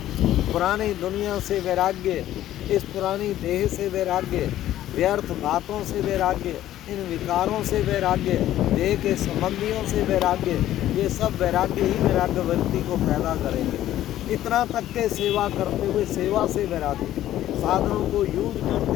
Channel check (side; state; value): right; quieter; 13.1 dB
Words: पुरानी दुनिया से वैराग्य, इस पुरानी देह से वैराग्य, व्यर्थ बातों से वैराग्य, इन विकारों से वैराग्य, देह के संबंधियों से वैराग्य, ये सब वैराग्य ही वैराग्य व्यक्ति को पैदा करेंगे। इतना तक के सेवा करते हुए सेवा से वैराग्य, साधनों को यूज